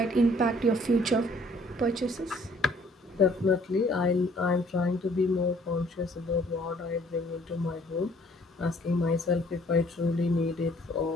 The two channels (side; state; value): both; normal; correlation 0.59